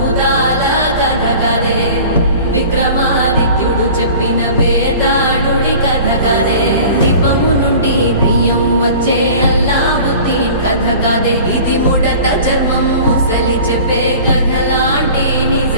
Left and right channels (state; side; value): inverted; both; correlation -0.42